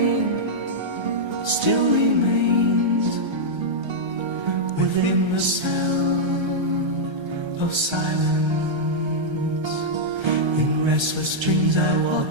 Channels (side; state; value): left; late; 1.3 ms